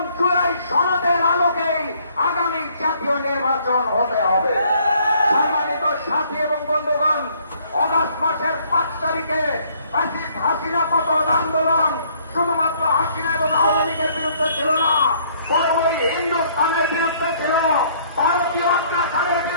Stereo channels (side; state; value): both; inverted; correlation -0.62